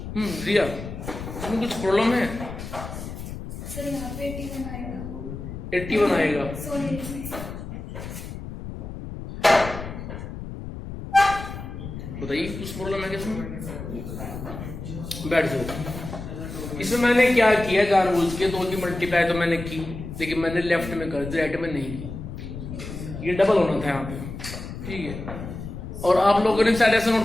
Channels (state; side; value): noise; left; rumble, 9 dB below the sound